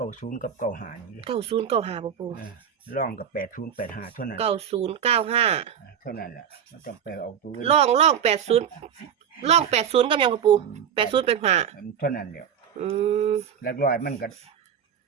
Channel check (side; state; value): left; quieter; 8.4 dB